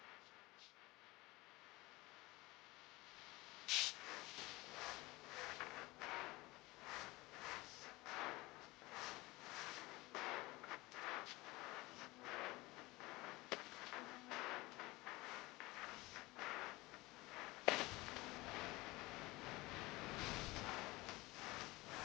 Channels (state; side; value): quieter; right; 21.4 dB